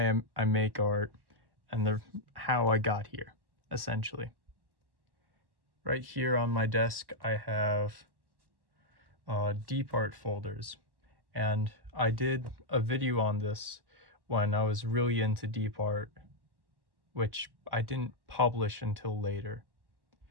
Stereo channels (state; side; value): late; left; 1.1 ms